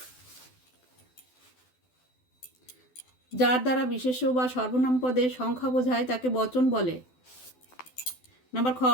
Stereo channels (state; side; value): late; right; 12 ms